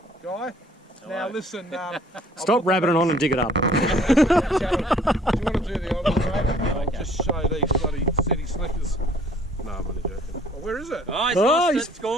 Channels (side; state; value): both; normal; correlation 0.57